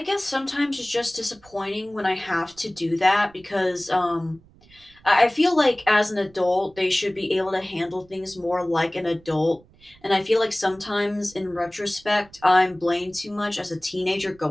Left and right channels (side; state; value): right; noise; rumble, 28 dB below the sound